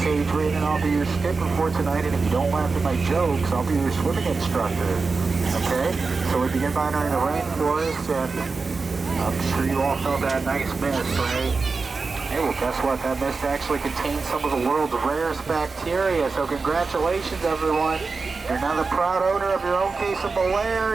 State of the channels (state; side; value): quieter; left; 4.3 dB